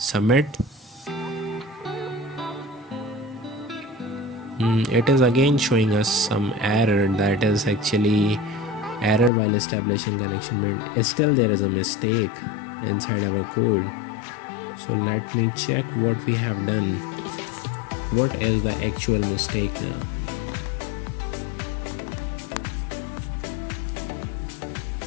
It is again showing us some error, that is actually error while establishing connection made. Still there is a mistake inside our code. So let me check what we have done. What is the actual mistake now?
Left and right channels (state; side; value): drops out; right; at 9.3 s